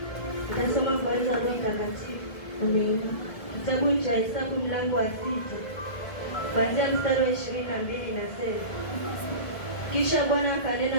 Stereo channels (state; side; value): late; right; 1.7 ms